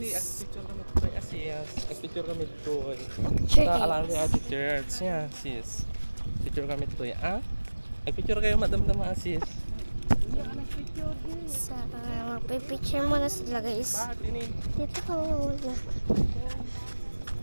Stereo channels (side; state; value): both; inverted; correlation -1.00